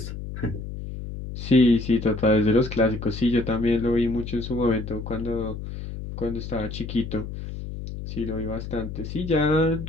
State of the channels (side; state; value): left; noise; hum, 8 dB below the sound